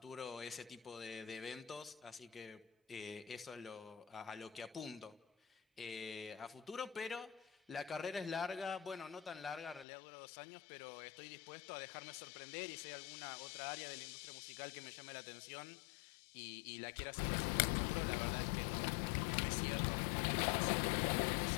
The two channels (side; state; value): right; drops out; at 9.9 s